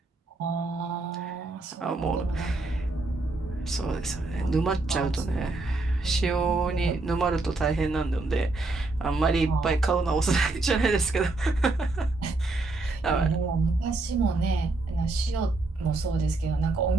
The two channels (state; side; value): quieter; left; 3.2 dB